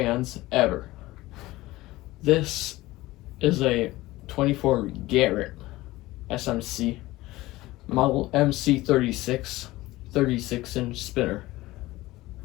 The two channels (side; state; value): right; quieter; 18.4 dB